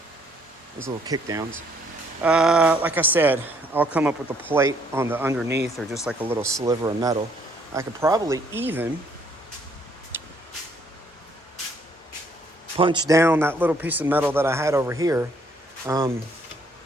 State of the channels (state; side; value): normal; both; correlation 0.66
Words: Those little kickdowns. Like I said, I'll come up with a plate on the underneath or just like a little sliver of metal. I could probably even punch down that little piece of metal that I had over here,